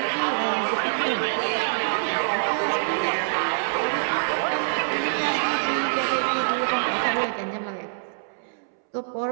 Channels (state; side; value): silent; left; 62 dB below the other